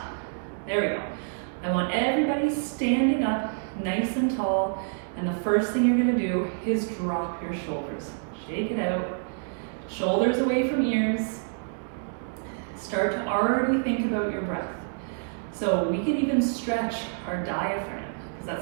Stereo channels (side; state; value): left; silent; digital silence